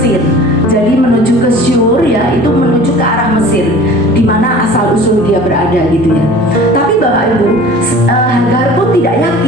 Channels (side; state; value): both; normal; correlation 0.44